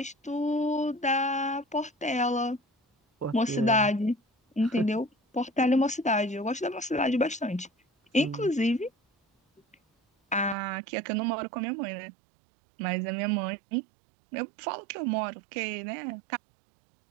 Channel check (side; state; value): left; drops out; at 10.6 s